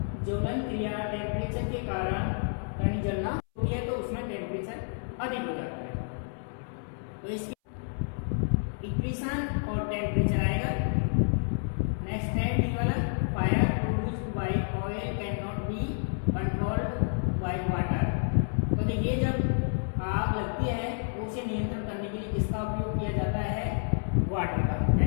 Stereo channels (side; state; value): right; silent; 58 dB below the other